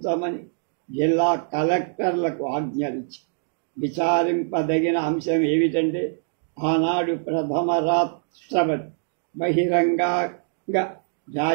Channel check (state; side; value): silent; left; digital silence